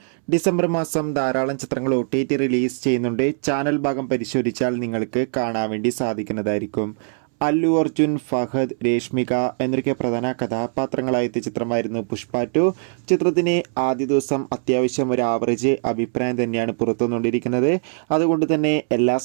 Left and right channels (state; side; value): silent; left; 64 dB below the other